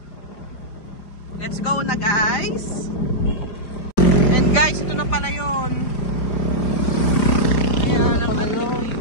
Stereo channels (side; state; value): right; late; 4.9 ms